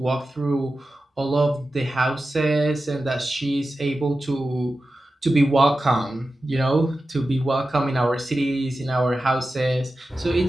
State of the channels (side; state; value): both; normal; correlation 0.93